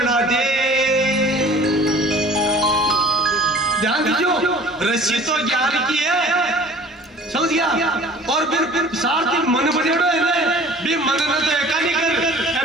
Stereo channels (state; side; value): normal; both; correlation 0.47